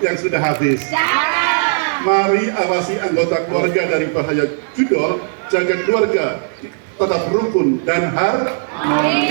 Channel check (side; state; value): left; silent; 68 dB below the other